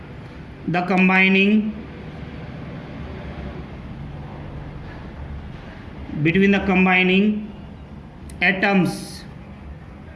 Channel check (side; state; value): both; identical; correlation 1.00